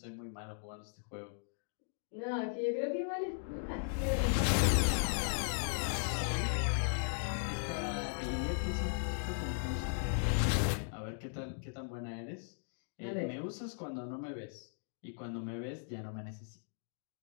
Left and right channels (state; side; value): silent; right; digital silence